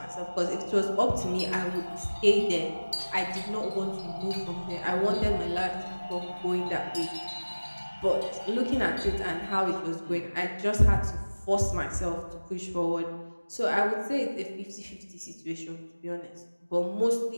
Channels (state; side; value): inverted; both; correlation -1.00